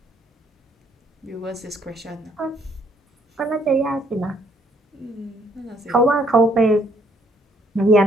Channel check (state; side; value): normal; both; correlation 0.66